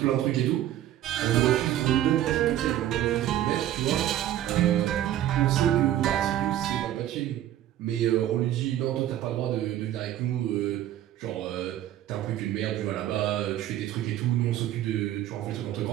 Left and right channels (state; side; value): quieter; left; 12.5 dB